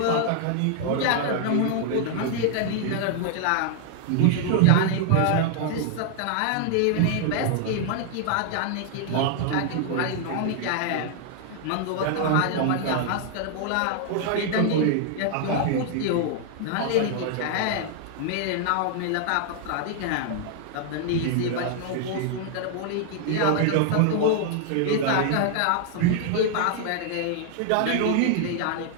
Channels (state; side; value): different; both; correlation 0.00